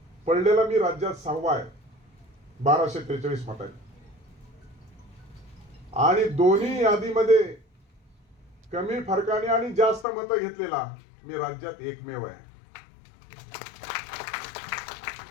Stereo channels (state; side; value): drops out; right; at 10.1 s